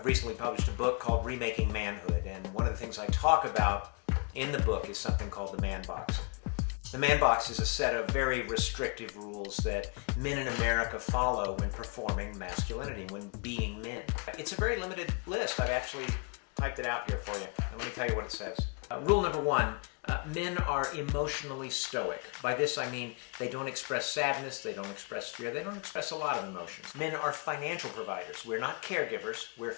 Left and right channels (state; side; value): quieter; right; 35.7 dB